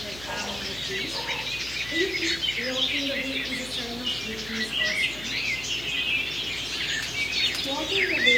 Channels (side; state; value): left; noise; hum, 16 dB below the sound